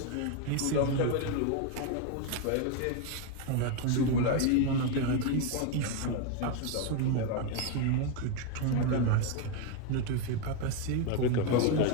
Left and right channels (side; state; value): both; different; correlation 0.01